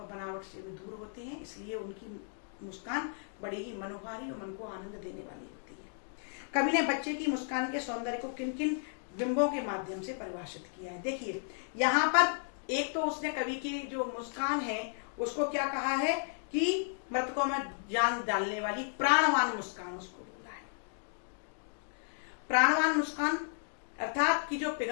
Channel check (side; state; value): right; silent; digital silence